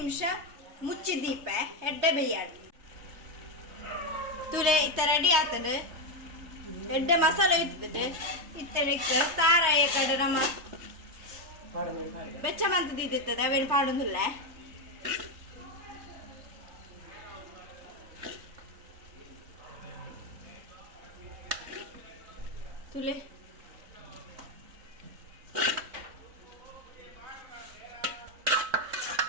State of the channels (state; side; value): late; left; 3.2 ms